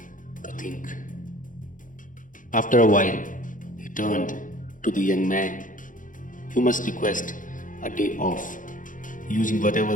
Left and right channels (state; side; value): late; right; 0.38 ms